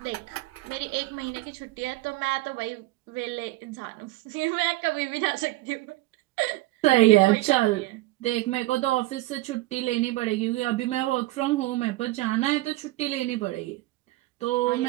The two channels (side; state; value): left; quieter; 18.7 dB